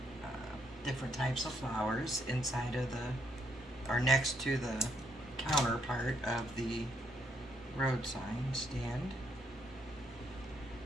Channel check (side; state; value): both; normal; correlation 0.73